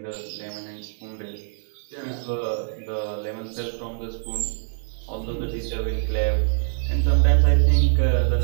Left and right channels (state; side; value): silent; left; 62 dB below the other